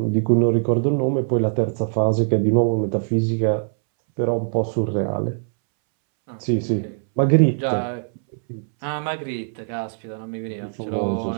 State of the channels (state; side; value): silent; left; 64 dB below the other